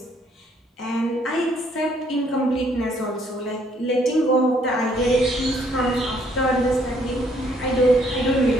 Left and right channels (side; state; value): both; normal; correlation 0.66